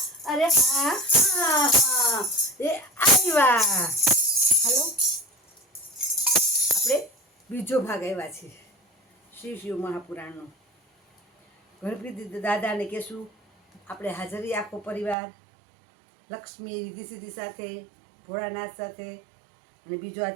અરે હા હા હા, આવ્યા. હાલો, આપણે બીજો ભાગ આવ્યા છે શ્રી શિવ મહાપુરાણનો. ગણપતિ દાદાને કહેશું આપણે હાજરી, આખો પરિવાર, લક્ષ્મી રિદ્ધિ સિદ્ધિ સાથે, ભોળાનાથ સાથે. અને બીજો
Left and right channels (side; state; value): left; drops out; at 15.2 s